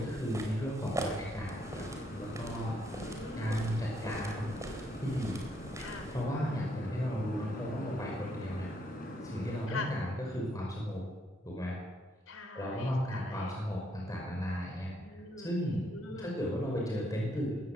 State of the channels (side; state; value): both; normal; correlation 0.73